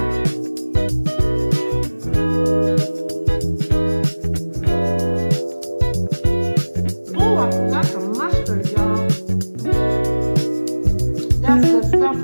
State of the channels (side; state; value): both; inverted; correlation -1.00